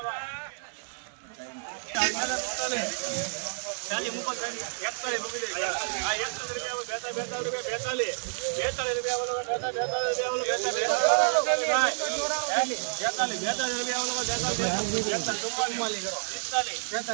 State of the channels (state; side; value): silent; left; digital silence